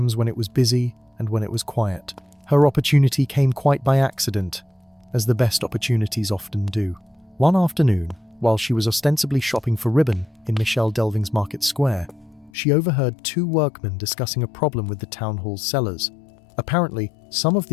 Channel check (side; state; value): right; drops out; at 12.5 s